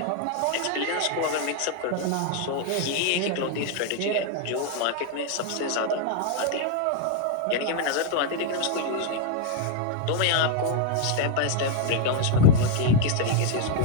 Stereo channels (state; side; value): different; both; correlation 0.00